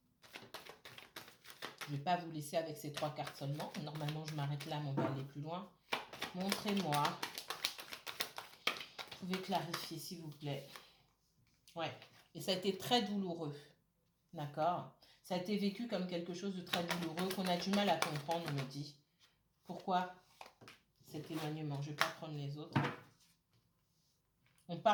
Je ne vais pas vous laisser avec ces 3 cartes seulement. Normalement, je m'arrête là, mais on va aller plus loin. Montrez-moi pouvez clarifier, s'il vous plaît? Ouais. Et ça a été très douloureux. D'accord? Ça a été vécu comme quelque chose de très douloureux qu'on a du mal à comprendre, on me dit. Pourquoi cet éloignement? Je ne vais pas prendre les autres. On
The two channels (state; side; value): identical; both; correlation 1.00